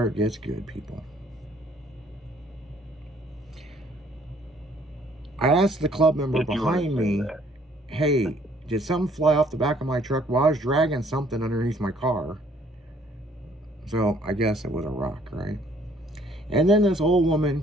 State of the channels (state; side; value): normal; both; correlation 0.61